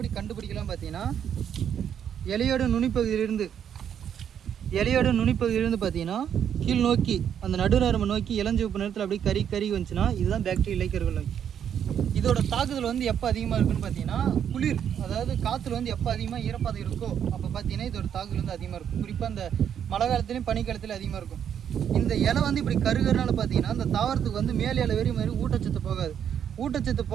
கண்டுபிடிக்கலாம் பார்த்தீங்கன்னா இலையோட நுனிப்பகுதியிலிருந்து பார்த்தீங்கன்னா கீழ் நோக்கி அந்த நடுநரம்பு நோக்கி இளஞ்சிவப்பு நேரத்தில் அப்படியே கறி வந்துச்சுன்னா இதுதான் பாக்டீரியா இலைக்கருகள் நோய். இதோட தாக்குதல் எப்போ அதிகமாக இருக்குன்னு பார்த்தீங்கன்னா குளிர், அதாவது காற்றுல எப்போ அதிகமாக ஈரப்பதம் இருக்கோ அப்போ பார்த்தீங்கன்னா இதோட தாக்குதல் அதிகமாக இருக்கும். குறிப்பாக அந்த மழை காலத்துலேயும் பனிக்காலத்துலேயும் அதிகமாக இருக்கும். இந்த இலை இப்படி கருகிறனால பார்த்தீங்கன்னா அந்த தாவரத்துக்கு மேல் இலை வெறி மாதிரி ஊட்டச்சத்து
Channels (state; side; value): quieter; left; 8.8 dB